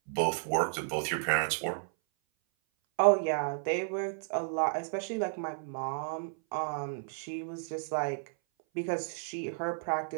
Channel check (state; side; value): silent; left; 56 dB below the other